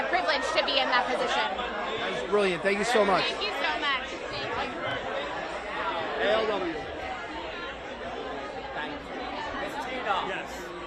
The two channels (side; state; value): both; identical; correlation 1.00